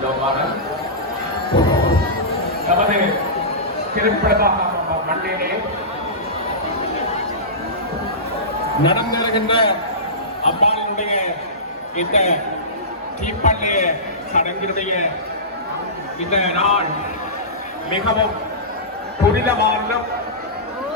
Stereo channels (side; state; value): both; normal; correlation -0.20